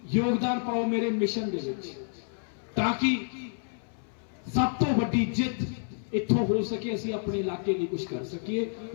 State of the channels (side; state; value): right; silent; 58 dB below the other